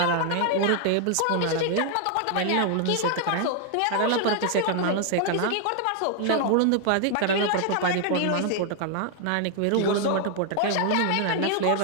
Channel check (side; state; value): both; different; correlation 0.00